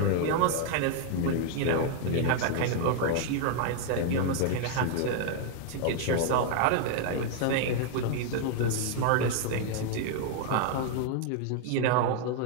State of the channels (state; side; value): different; both; correlation 0.00